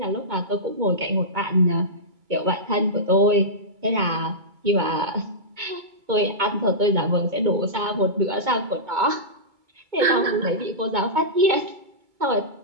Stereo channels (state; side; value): late; left; 2.2 ms